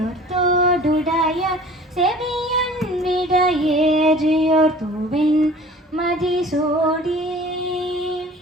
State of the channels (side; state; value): both; normal; correlation 0.45